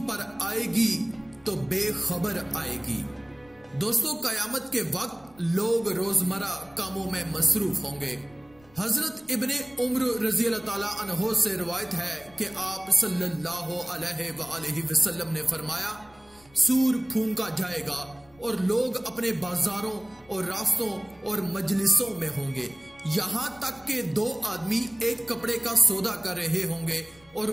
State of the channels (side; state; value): left; noise; rumble, 29 dB below the sound